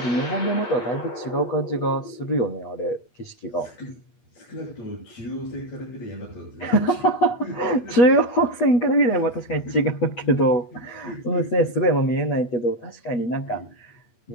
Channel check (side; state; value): right; late; 8.5 ms